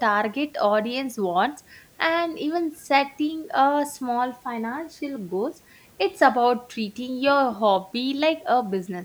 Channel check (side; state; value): both; identical; correlation 1.00